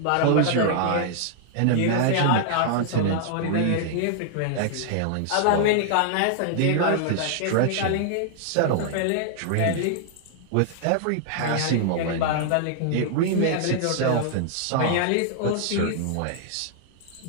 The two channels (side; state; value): both; different; correlation -0.01